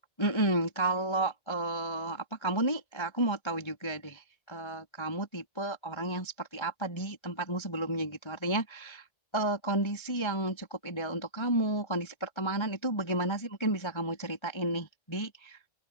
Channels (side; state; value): right; late; 1.3 ms